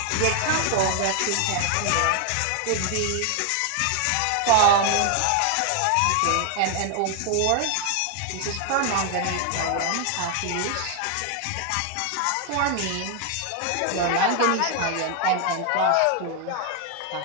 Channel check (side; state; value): both; different; correlation 0.00